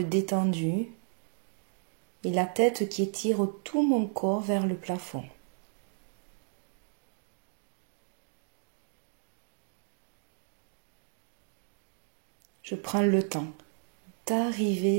détendues et la tête qui étire tout mon corps vers le plafond. Je prends le temps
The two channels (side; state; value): left; silent; 56 dB below the other